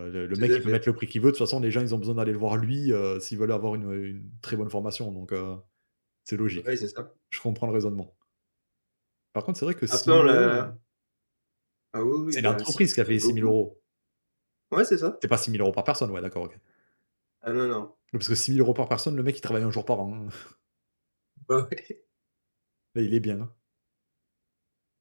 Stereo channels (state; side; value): inverted; both; correlation -1.00